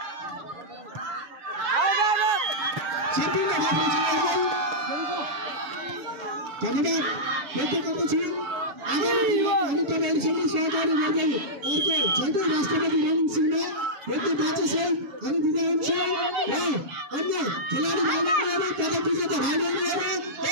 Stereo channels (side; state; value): left; late; 7.4 ms